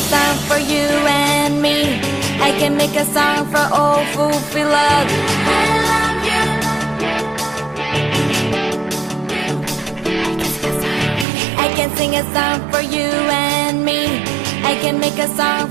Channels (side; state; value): left; drops out; at 11.2 s